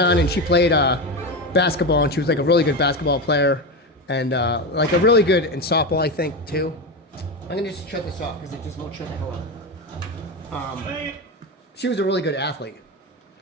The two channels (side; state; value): both; normal; correlation 0.17